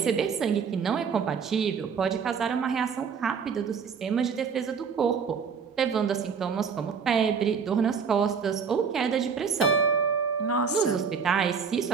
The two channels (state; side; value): quieter; left; 6.1 dB